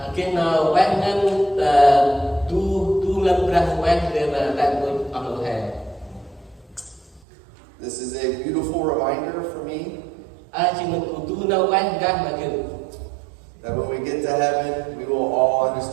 cái nào quét ngân tu lâm Brah quét để mà tại tôi ở lỗ hè. This is a beautiful reminder for me Chỉ mình cụ tu nào quét ra mà kiểu that when we get to heaven, we will all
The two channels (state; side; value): drops out; left; at 7.2 s